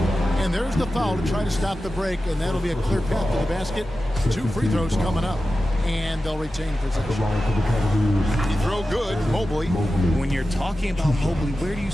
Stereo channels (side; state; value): both; normal; correlation 0.93